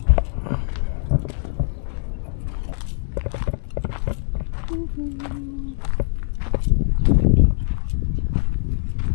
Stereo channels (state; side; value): silent; right; digital silence